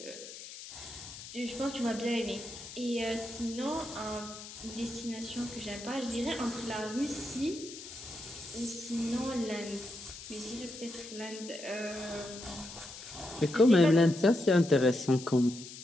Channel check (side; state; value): left; noise; hiss, 13 dB below the sound